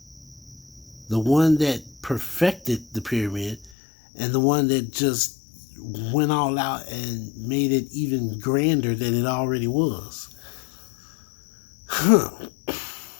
the one that perfected the pyramid and the one that just went all out and made it even grander than it already was. Huh.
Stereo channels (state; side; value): drops out; right; at 3.7 s